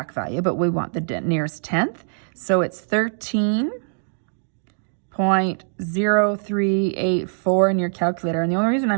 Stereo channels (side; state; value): left; silent; digital silence